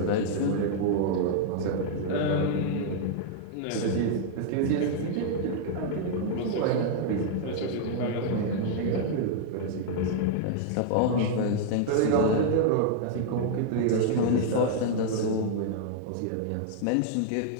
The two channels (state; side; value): different; both; correlation -0.01